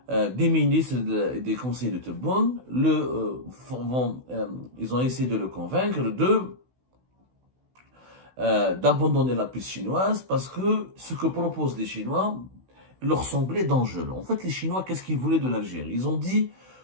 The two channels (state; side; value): late; left; 16 ms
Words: des ministres et des conseillers de Tebboune ils ont essayé de le convaincre d'abandonner la piste chinoise parce que ce que proposent les Chinois leur semblait dangereux. En fait, les Chinois, qu'est-ce qu'ils voulaient de l'Algérie? Ils ont dit,